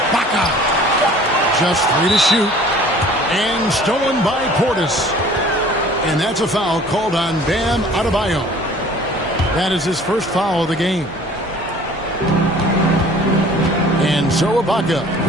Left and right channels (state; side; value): normal; both; correlation 0.49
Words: Just 3 to shoot. And stolen by Portis. And that's a foul called on Bam Adebayo. That is his first foul of the game. And so Ibaka,